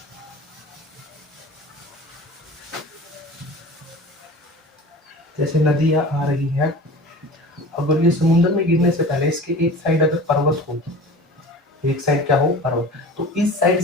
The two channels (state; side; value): normal; both; correlation 0.38